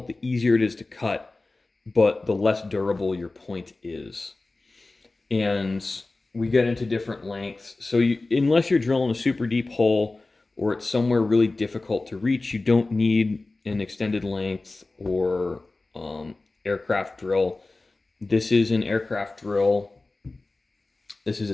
the easier it is to cut, but the less durable your point is. And we get into different lengths. So unless you're drilling a super deep hole or it's somewhere really difficult to reach, you don't need an extended length or aircraft drill. This is an aircraft drill. This is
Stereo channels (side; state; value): right; quieter; 3.3 dB